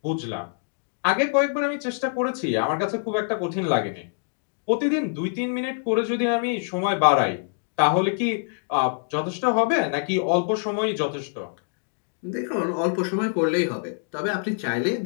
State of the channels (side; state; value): right; silent; digital silence